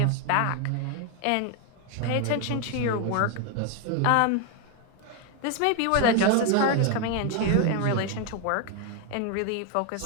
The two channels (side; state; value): both; different; correlation 0.01